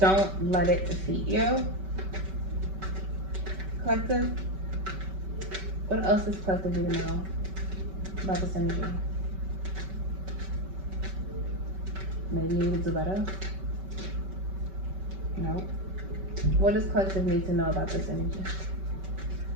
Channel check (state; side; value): late; left; 5.2 ms